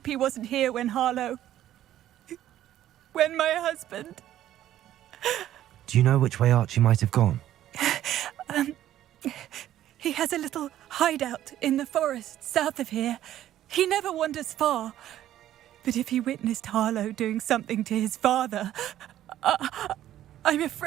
he wasn't here when Harlow... when my husband... Do you know which way Archie might have gone? He has a little hideout in the forest south of here. He never wanders far. But if he witnessed Harlow doing something to his father, I'm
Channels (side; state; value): left; quieter; 12.5 dB